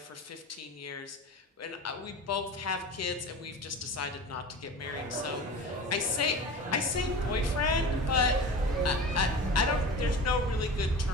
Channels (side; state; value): both; normal; correlation 0.34